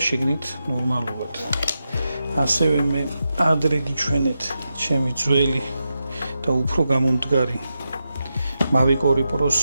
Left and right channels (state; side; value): inverted; both; correlation -0.88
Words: შიგნით ნორმალურად. ასევე მე ადრე გიჩვენეთ ჩემი ძველი და უფრო გამომდგარი Mavic 2 Pro-s